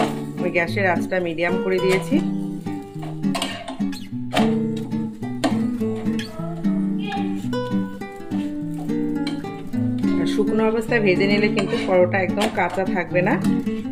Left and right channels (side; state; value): both; identical; correlation 1.00